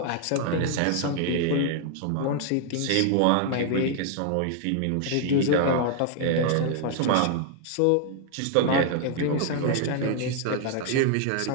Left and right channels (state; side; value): different; both; correlation 0.00